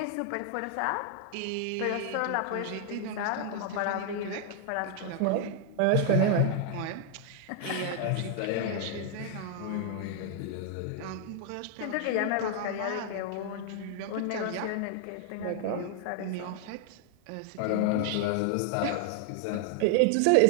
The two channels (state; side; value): different; both; correlation 0.00